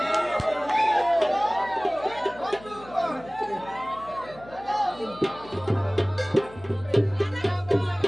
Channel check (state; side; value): noise; left; hum, 20 dB below the sound